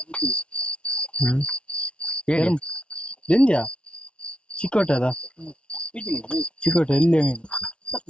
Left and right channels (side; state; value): right; late; 0.058 ms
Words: ಹೇಳಿ ದಿಂಜ ಚಿಕ್ಕೋಟ ಅದ ಚಿಕ್ಕೋಟ ಎಲ್ಲಿ ಮೀನು